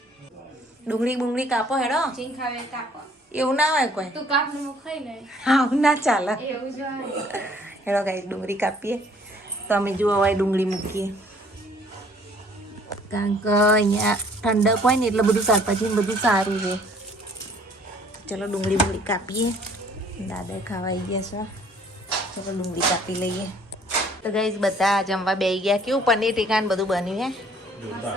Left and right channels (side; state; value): both; normal; correlation 0.58